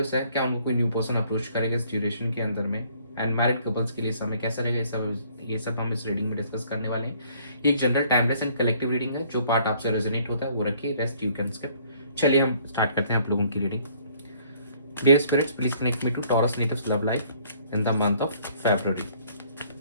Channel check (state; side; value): inverted; both; correlation -0.60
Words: है, क्या उनको कोई न्यू पर्सन अप्रोच करेगा इस ड्यूरेशन के अंदर में। एंड मैरिड कपल्स के लिए समय कैसा रहेगा, ये सब हम इस रीडिंग में डिस्कस करने वाले हैं। ये एक general timeless and collective reading है। जो पार्ट आपसे रेजोनेट होता है वो रखिए, रेस्ट यू कैन स्किप। चलिए हम स्टार्ट करते हैं आप लोगों की reading. Dear spirits, please connect me to Taurus natives love life in the month of February.